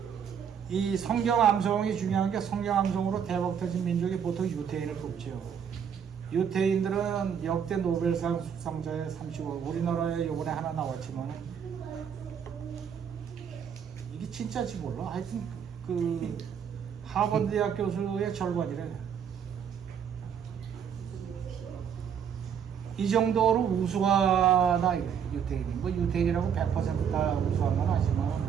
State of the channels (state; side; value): quieter; left; 7.9 dB